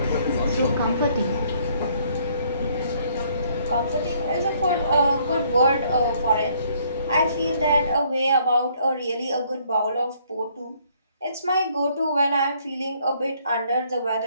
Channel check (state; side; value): inverted; both; correlation -0.65